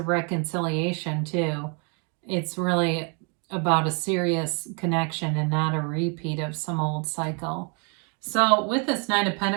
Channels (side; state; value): left; quieter; 36.1 dB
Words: reconciliation too, it's really about a serious connection and not a repeat of some old cycle. So with this Nine of